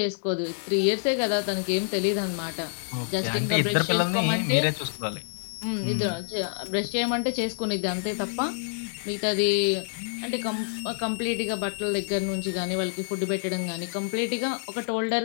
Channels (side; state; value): right; silent; digital silence